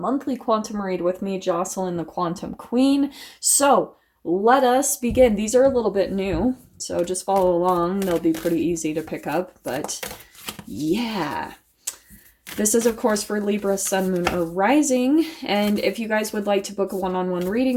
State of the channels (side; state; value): both; identical; correlation 1.00